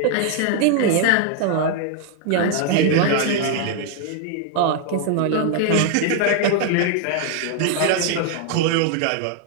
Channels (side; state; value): both; different; correlation 0.00